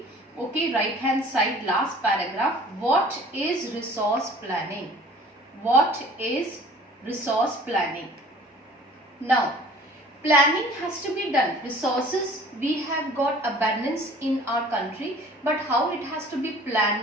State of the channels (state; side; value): normal; both; correlation 0.49